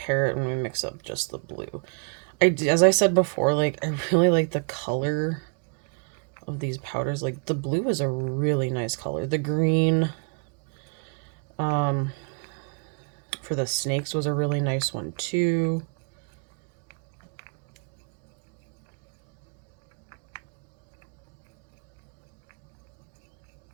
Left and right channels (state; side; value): quieter; left; 37.8 dB